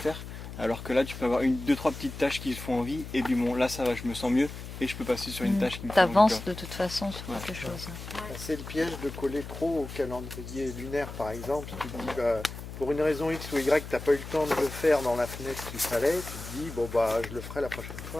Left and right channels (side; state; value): left; noise; hum, 10 dB below the sound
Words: alors que là tu peux avoir 2-3 petites tâches qui te font envie, et puis bon là ça va, je me sens mieux, et je peux passer sur une tâche qui me fait envie. T'avances de toute façon sur quelque chose. C'est le piège de coller trop au calendrier lunaire par exemple. Tu te dis pour une raison X ou Y, t'as pas eu le temps de le faire dans la fenêtre qu'il fallait, tu te dis je le ferai la prochaine